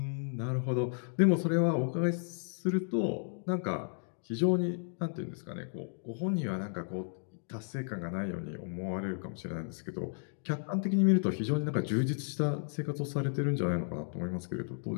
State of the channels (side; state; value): right; silent; digital silence